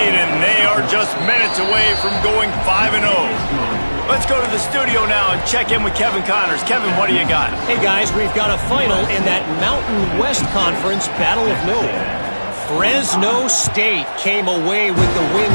and they are just minutes away from going 5-0. Let's go to the studio now and check in with Kevin Connors. Kevin, what do you got? Hey, guys, we've got a final in that Mountain West Conference Battle of Note. Fresno State came away with the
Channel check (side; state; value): both; inverted; correlation -1.00